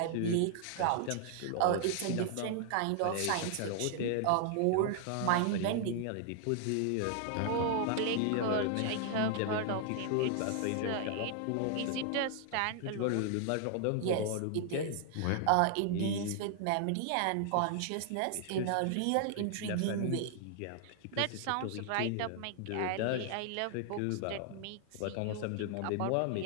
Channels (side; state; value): both; different; correlation 0.00